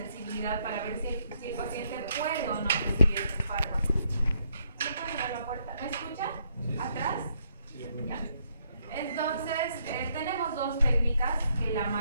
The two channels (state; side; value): inverted; both; correlation -0.73